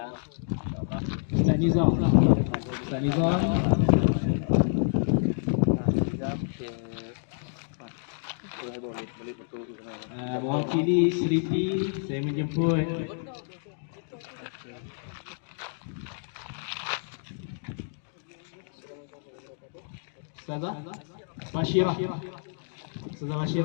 Ustaz Nizam. Ustaz Nizam. Mewakili Seripi saya menjemput Ustazah Bashirah. Ustazah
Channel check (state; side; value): silent; right; digital silence